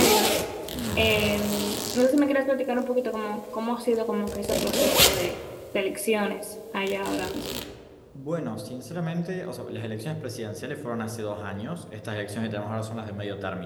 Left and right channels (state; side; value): identical; both; correlation 1.00